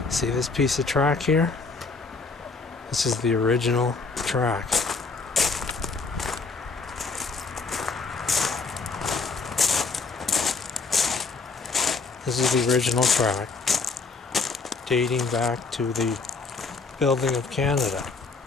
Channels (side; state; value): right; quieter; 4.2 dB